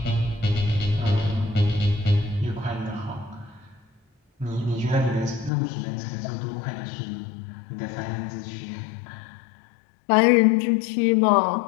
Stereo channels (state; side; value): drops out; right; at 5.5 s